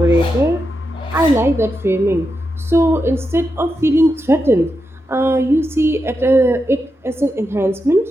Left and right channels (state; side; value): normal; both; correlation 0.87